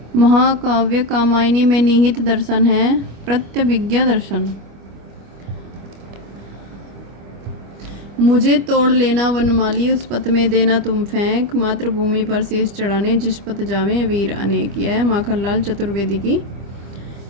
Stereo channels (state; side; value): late; left; 25 ms